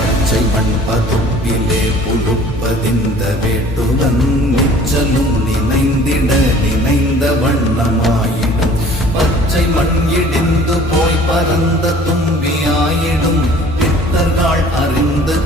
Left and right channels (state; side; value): normal; both; correlation 0.50